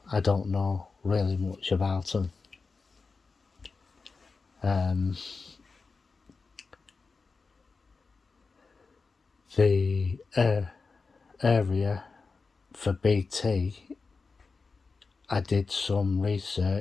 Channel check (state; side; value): quieter; right; 4.4 dB